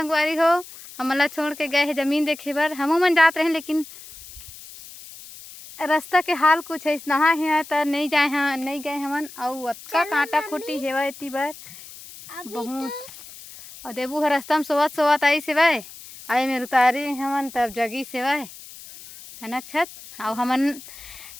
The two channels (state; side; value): noise; left; hiss, 17 dB below the sound